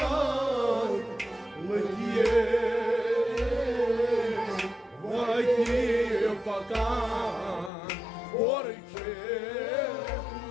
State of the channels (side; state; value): right; drops out; at 7.7 s